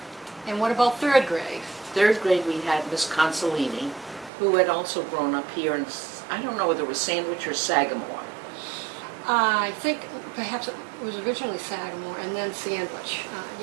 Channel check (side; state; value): left; drops out; at 4.3 s